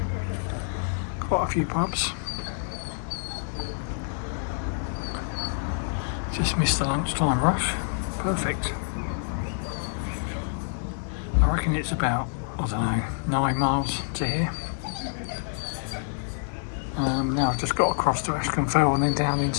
Quite a few pubs. Just missed the lunchtime rush. Perfect. I reckon it's about, I don't know, 9 miles to here. Now I've just got across to Askham Fell and then down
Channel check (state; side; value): silent; right; digital silence